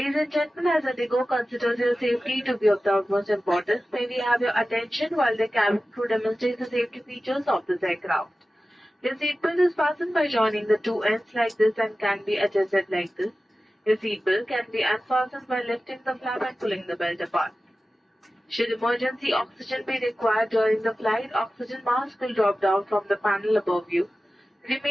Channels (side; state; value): both; normal; correlation 0.95